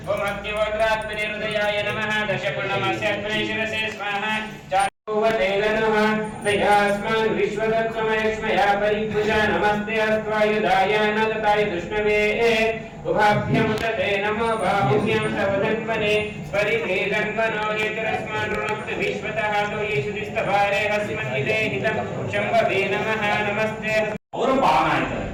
ओम अग्निहोत्रात्मने हृदयाय नमः दशपूर्णमास्यात्मने शिरसे स्वाहा तयास्मान् विश्वदत्समयक्ष्मया परिभुजा नमस्ते अस्त्वायुधाय नदताय दुष्णवे उभाभ्यं तते नमो बाहुभ्यं तव धन्वने परिभेदन्वनो हेतरस्मान् ऋणक्त विश्वतः तो येषुदिस्तभारे हस्मन्निदे हितं शम्भवे नमः नमस्ते ಅವರು ಪಾವನ ಆಯ್ತಾರೆ.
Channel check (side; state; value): both; identical; correlation 1.00